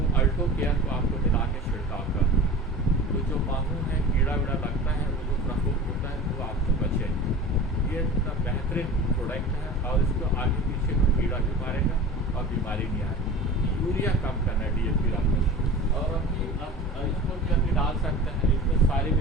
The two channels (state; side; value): normal; both; correlation 0.36